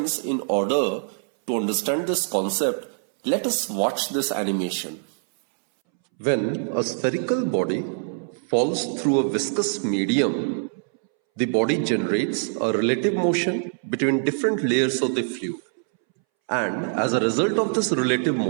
in order to understand this concept, let us watch this animation. When a spherical body falls through a viscous medium, the body generates a relative motion between different layers of the fluid. And as a result of this relative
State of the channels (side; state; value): left; silent; 63 dB below the other